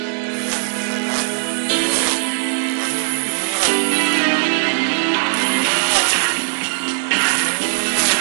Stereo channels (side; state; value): left; silent; digital silence